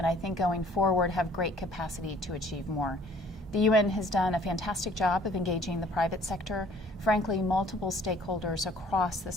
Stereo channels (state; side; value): normal; both; correlation 0.56